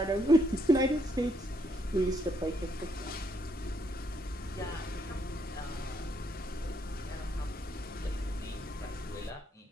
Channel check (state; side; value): normal; both; correlation 0.73